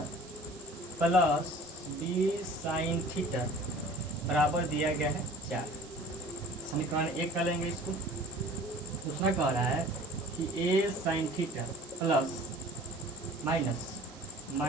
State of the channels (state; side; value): noise; right; hiss, 20 dB below the sound